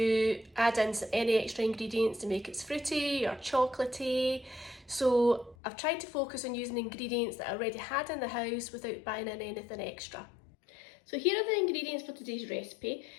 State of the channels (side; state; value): right; drops out; at 5.6 s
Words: add in any extra ingredients to make it fruity or chocolatey. So I've tried to focus on using ingredients that I already had in the house without buying in anything extra. So here are the ingredients for today's recipe.